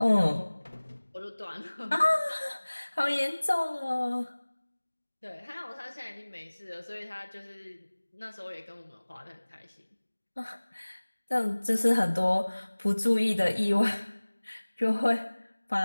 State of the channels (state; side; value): inverted; both; correlation -1.00